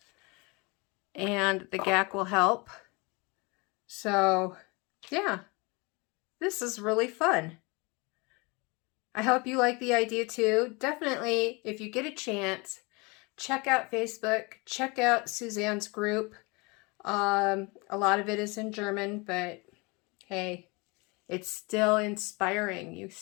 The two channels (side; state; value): right; quieter; 27.6 dB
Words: and the gack will help. So yeah, this is really fun. I hope you like the idea too. Definitely, if you get a chance, check out Facebook, check out Susanne's group. A lot of it is in German, but hey, it's still inspiring. You